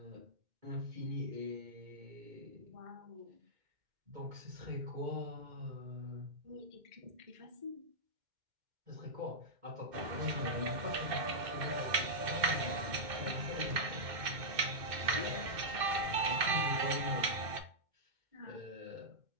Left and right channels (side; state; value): left; late; 2.1 ms